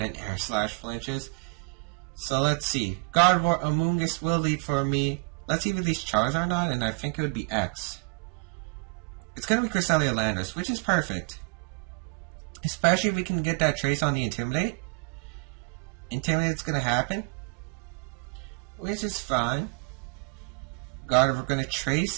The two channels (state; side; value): quieter; left; 32.1 dB